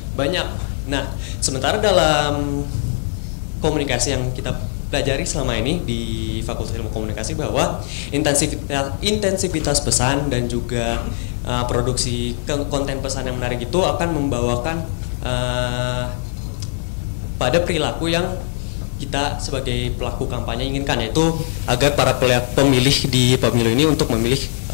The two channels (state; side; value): silent; right; digital silence